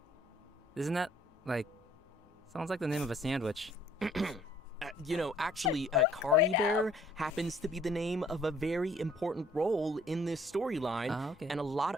Isn't that, sounds like the name of a sandwich. Actually, Kari Bear happens to be the name of a very important role in this storyline, Ah, okay. and a lot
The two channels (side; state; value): both; normal; correlation 0.59